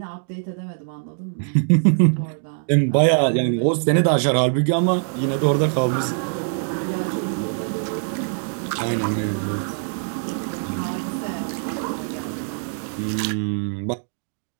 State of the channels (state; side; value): silent; left; 64 dB below the other